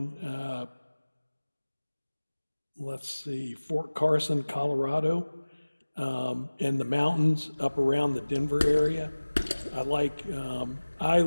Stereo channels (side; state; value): both; inverted; correlation -1.00